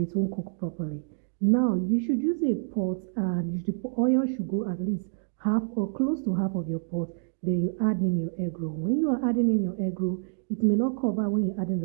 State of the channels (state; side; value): silent; left; digital silence